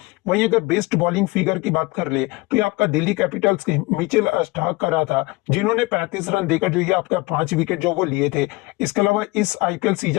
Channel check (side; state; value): right; quieter; 22.6 dB